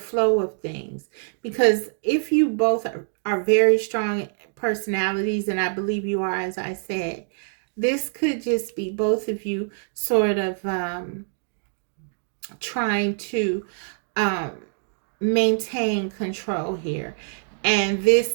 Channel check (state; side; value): silent; left; digital silence